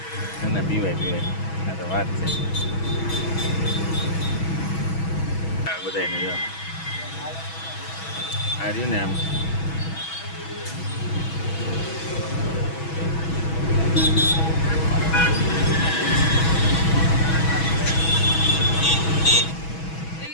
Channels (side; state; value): right; late; 6.2 ms